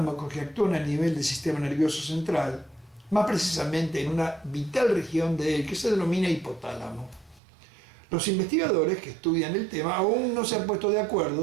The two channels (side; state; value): left; drops out; at 7.4 s